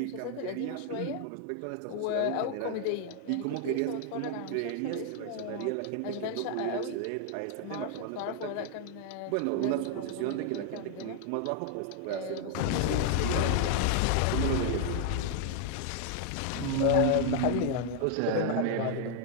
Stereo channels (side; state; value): both; different; correlation 0.00